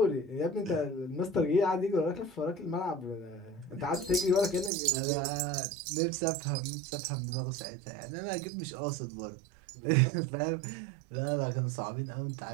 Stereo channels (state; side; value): drops out; left; at 4.7 s